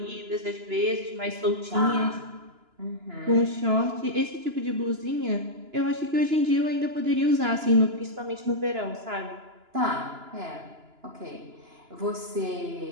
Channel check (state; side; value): late; left; 2.9 ms